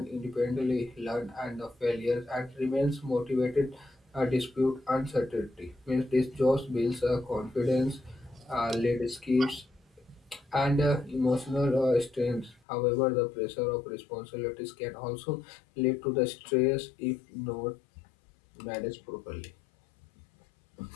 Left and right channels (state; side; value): drops out; right; at 12.6 s